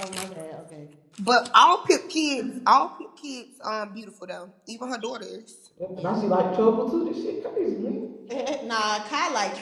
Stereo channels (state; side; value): identical; both; correlation 1.00